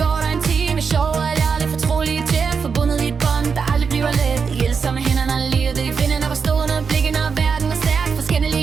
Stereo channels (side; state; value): left; quieter; 5.7 dB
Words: går der en time. Sjov og ærligt, fortrolige tæt. Forbundet i et bånd, der aldrig bliver let. Hjælper med hænderne, livet i finden. Og stående blikken, og verden er stærk.